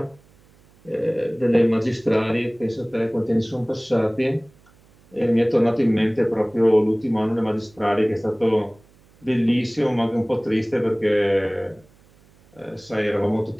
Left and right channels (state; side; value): noise; right; hum, 30 dB below the sound